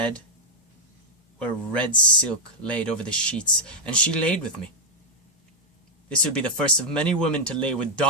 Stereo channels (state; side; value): normal; both; correlation -0.04